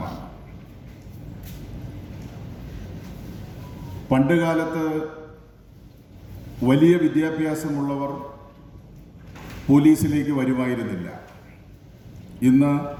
പണ്ടുകാലത്ത് വലിയ വിദ്യാഭ്യാസമുള്ളവർ പോലീസിലേക്ക് വരുമായിരുന്നില്ല. ഇന്ന്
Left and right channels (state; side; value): identical; both; correlation 1.00